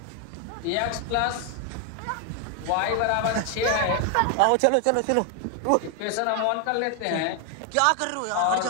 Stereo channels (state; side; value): different; both; correlation 0.01